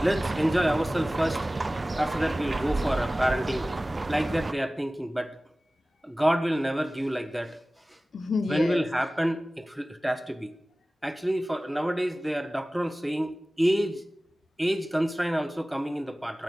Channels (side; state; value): both; normal; correlation 0.97